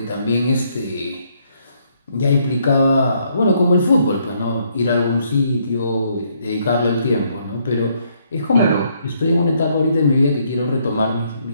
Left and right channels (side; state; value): both; inverted; correlation -0.71